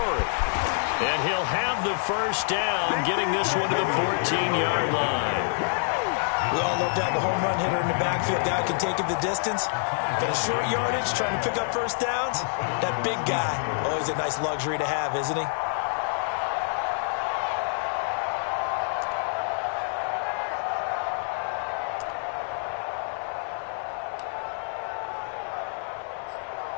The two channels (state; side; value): silent; right; 58 dB below the other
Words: And he'll have the first down, getting this one to the 14-yard line. We all love to have a home run hitter in the backfield. Guy can take it the distance. But a short yardage, trying to pick up first downs, that big guy, always a nice luxury to have, isn't he?